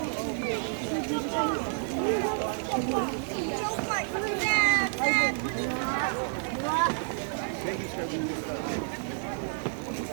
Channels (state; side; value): silent; left; 58 dB below the other